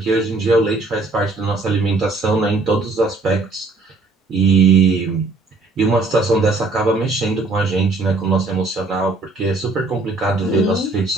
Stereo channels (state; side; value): quieter; left; 3.4 dB